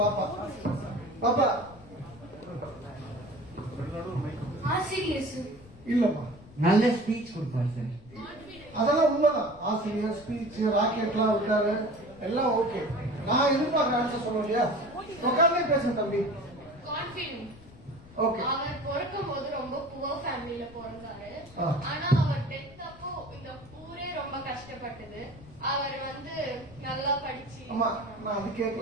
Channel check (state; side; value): noise; left; rumble, 21 dB below the sound